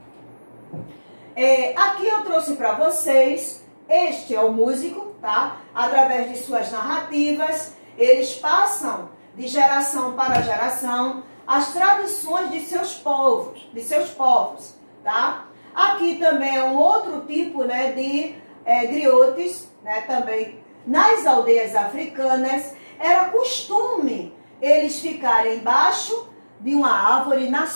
Aqui eu trouxe para vocês, este é o músico, tá? Através de suas narrativas, eles passam de geração para geração as tradições de seus povos, tá? Aqui também é um outro tipo, de griotes, também nas aldeias africanas, era costume eles ficarem embaixo de uma árvore na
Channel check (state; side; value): inverted; both; correlation -1.00